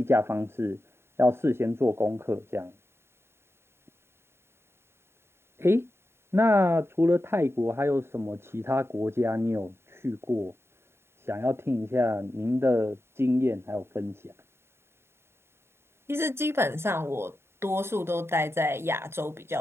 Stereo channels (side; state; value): left; late; 0.12 ms